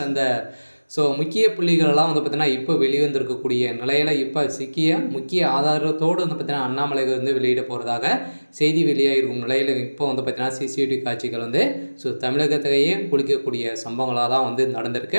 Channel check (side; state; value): both; inverted; correlation -1.00